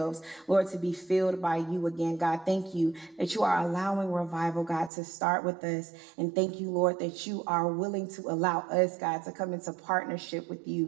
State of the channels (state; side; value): drops out; left; at 4.9 s